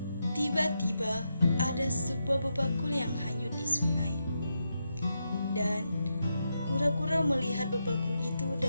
Tiba-tiba ada sebuah bebakul yang hanyut di sungai. Dan kura-kura melihat bebakul itu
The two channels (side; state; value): both; inverted; correlation -0.85